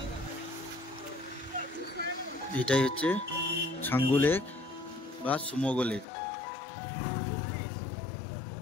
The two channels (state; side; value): drops out; right; at 6.1 s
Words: এটাই হচ্ছে ছাঙ্গু লেক বা সুমোগো লেক।